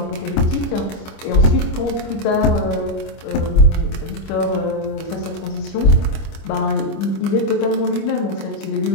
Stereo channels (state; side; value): late; right; 25 ms